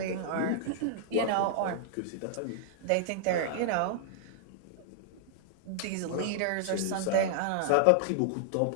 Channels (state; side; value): different; both; correlation -0.01